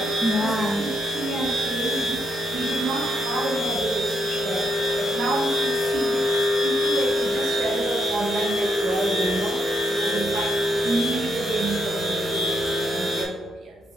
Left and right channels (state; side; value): normal; both; correlation 0.79